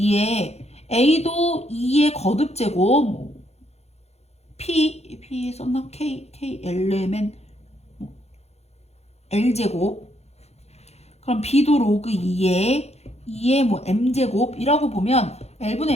A도 2의 거듭제곱, 뭐 P 썼나? K Lmen 뭐 L제곱. 그럼 B도 로그 2의 뭐 M제곱이라고 보면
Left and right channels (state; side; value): late; right; 0.31 ms